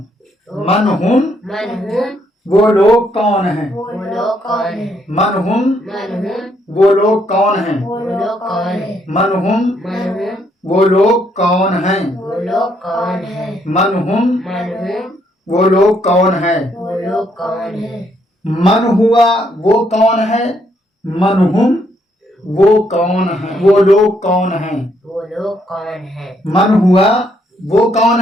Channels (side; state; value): both; normal; correlation 0.73